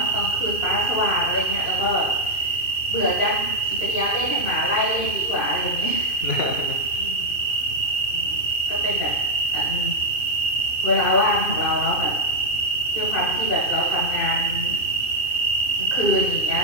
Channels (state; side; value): late; right; 2.5 ms